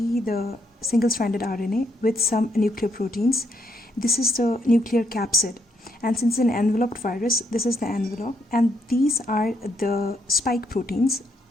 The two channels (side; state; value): both; normal; correlation 0.75